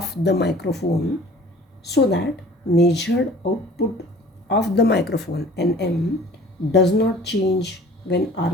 the microphone, so that measured output of the microphone Nm does not change when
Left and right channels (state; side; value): normal; both; correlation 0.48